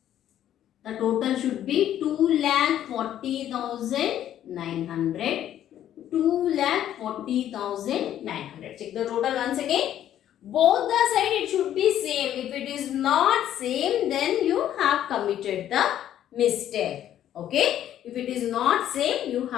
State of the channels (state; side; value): quieter; right; 11.3 dB